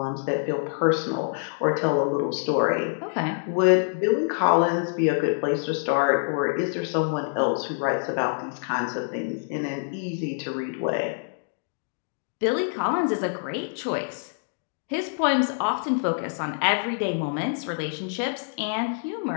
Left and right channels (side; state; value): right; silent; digital silence